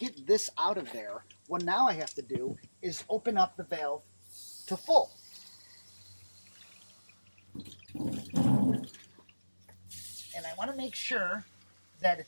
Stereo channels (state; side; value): inverted; both; correlation -1.00